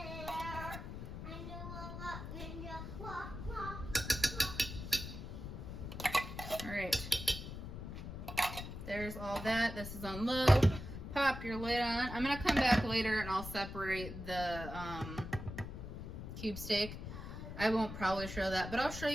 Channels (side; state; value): left; noise; rumble, 8 dB below the sound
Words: right. There's all that. This is on low. Pop your lid on. I'm gonna come back later and I'll separate the cube steak. I won't probably show that, but I'll show